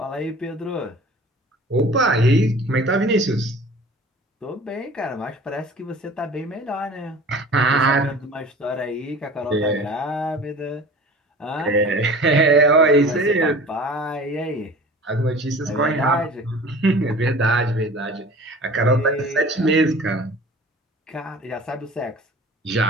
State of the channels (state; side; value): normal; both; correlation 0.42